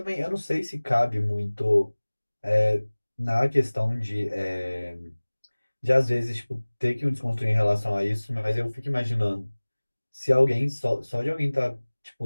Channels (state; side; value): inverted; both; correlation -1.00